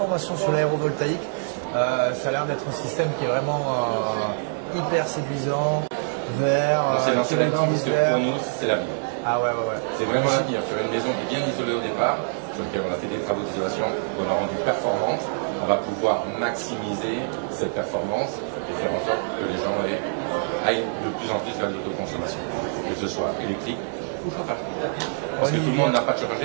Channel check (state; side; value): silent; left; digital silence